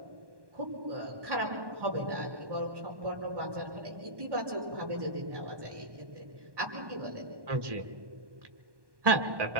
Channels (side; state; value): left; late; 1.2 ms